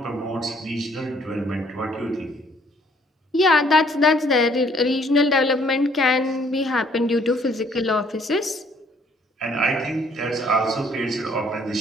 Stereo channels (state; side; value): normal; both; correlation 0.63